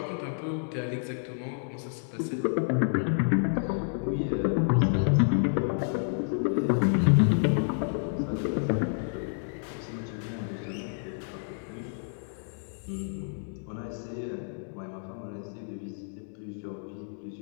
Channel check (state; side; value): silent; right; digital silence